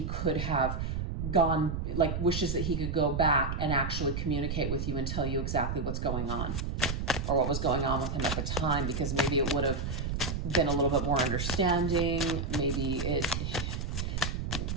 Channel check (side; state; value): right; noise; rumble, 2 dB below the sound